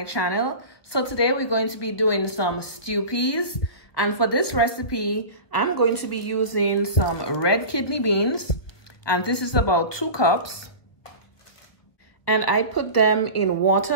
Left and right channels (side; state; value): right; late; 1.4 ms